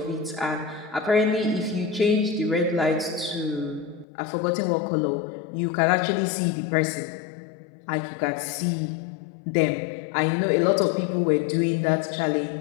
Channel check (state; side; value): drops out; right; at 4.0 s